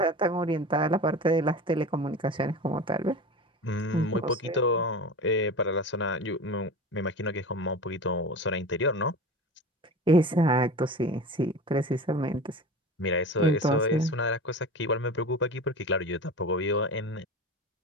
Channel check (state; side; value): normal; both; correlation 0.32